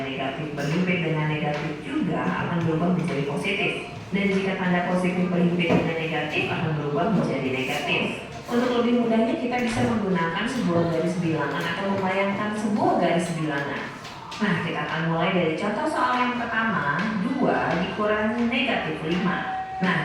negatif berhimpit dengan negatif juga akan berubah menjadi positif. Dan jika tanda positif berhimpit dengan negatif akan berubah menjadi negatif. Untuk lebih mudahnya kita bisa menggunakan sebuah garis bilangan atau membayangkan sebuah garis bilangan. Nah, kita akan mulai dari contoh soal yang pertama, 2 dikurangi negatif 5. Nah,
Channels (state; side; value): identical; both; correlation 1.00